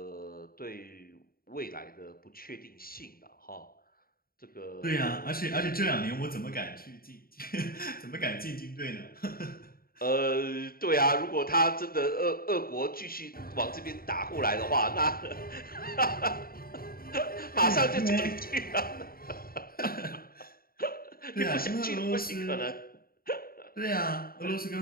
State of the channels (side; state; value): right; late; 0.43 ms